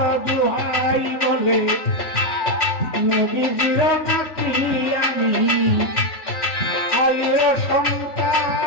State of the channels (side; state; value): right; late; 3.1 ms